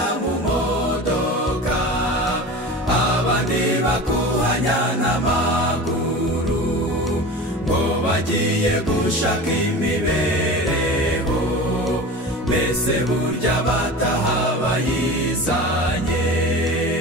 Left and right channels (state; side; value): normal; both; correlation 0.33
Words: mu modoka, abandi bakuhanya n'amaguru, ngo bagiye gushaka imibereho, mbese burya bataha bayizanye.